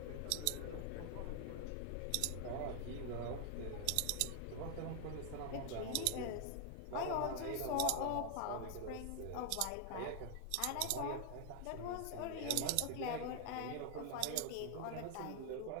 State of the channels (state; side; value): different; both; correlation 0.00